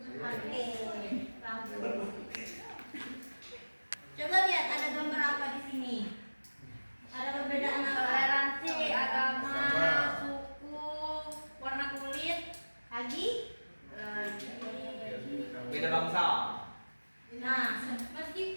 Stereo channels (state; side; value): inverted; both; correlation -1.00